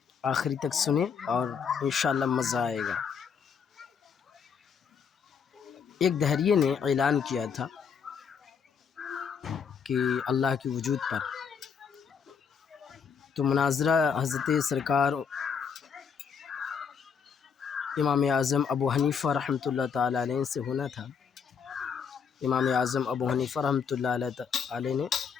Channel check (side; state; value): right; quieter; 6.5 dB